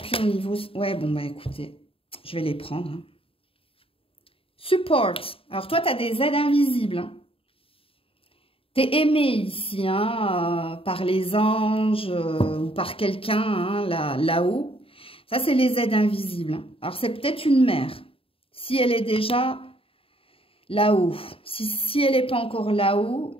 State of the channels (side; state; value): right; late; 0.27 ms